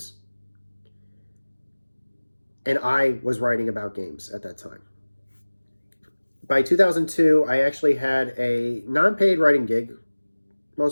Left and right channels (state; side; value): inverted; both; correlation -1.00